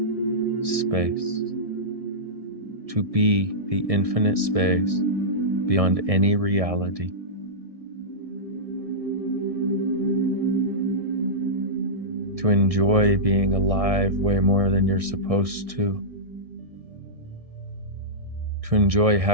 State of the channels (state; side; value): late; left; 1.6 ms